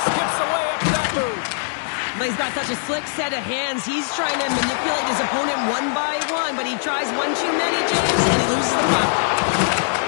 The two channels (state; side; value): silent; right; digital silence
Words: skips away after that move. But he's got such a slick set of hands. He's trying to manipulate his opponent one by one, but he tries one too many, James, and he loses the puck.